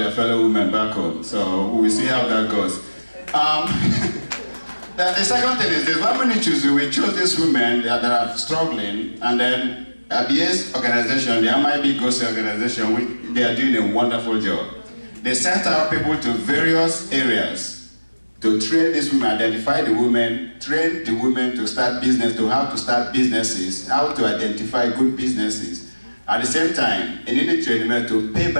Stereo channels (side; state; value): both; inverted; correlation -1.00